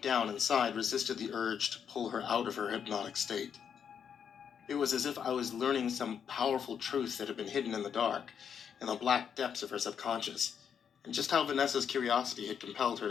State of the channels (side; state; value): right; quieter; 7.7 dB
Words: down inside resisted the urge to pull her out of her hypnotic state. It was as if I was learning some powerful truth that had been hidden in the dark, in the black depths of her subconscious, and just how Vanessa's curiosity had compelled her